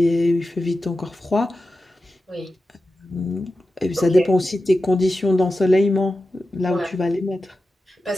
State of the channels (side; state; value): both; normal; correlation 0.92